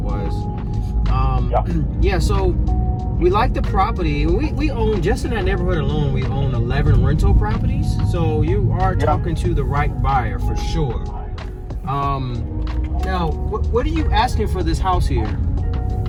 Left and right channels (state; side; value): identical; both; correlation 1.00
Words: Yeah. Yeah, so we like the property. We own, just in that neighborhood alone, we own 11 rental properties. So you are talking to the right buyer for sure. Now, what are you asking for this house here?